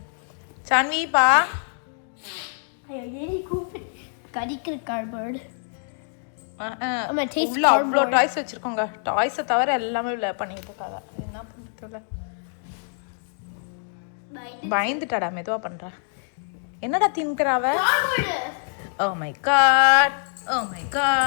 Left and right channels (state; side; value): silent; right; digital silence